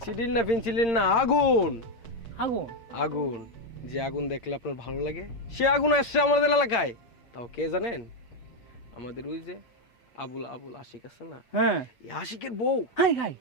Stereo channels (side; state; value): right; late; 8.2 ms